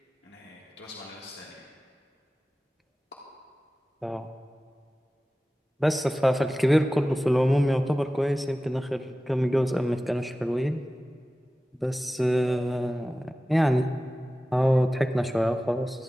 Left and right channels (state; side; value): normal; both; correlation 0.96